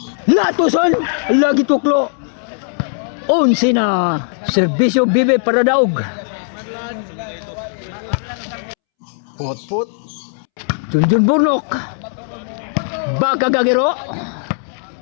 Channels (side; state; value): right; silent; 68 dB below the other